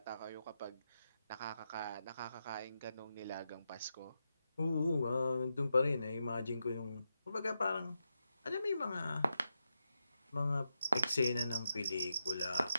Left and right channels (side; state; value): both; inverted; correlation -0.87